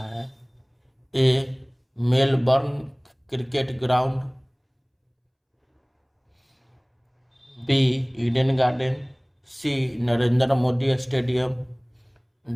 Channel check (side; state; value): both; identical; correlation 1.00